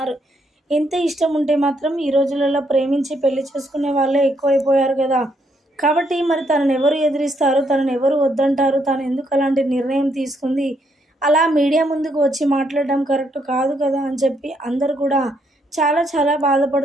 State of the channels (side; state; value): both; normal; correlation 0.74